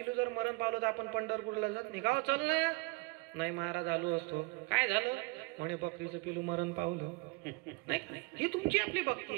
जर मरण पावलं तर आपण पंढरपूरला जात नाही का? चल ना, नाही महाराज आलो असतो, काय झालं म्हणे बकरीचं पिलू मरण पावलं, नाही। ही तुमची आपली भक्ती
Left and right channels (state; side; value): quieter; left; 26.2 dB